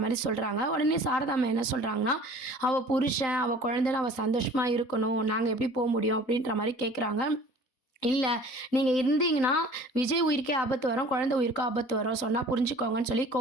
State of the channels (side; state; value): right; late; 3.9 ms